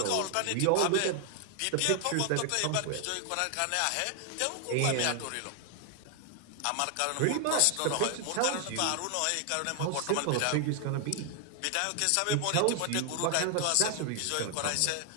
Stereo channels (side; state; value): both; different; correlation 0.00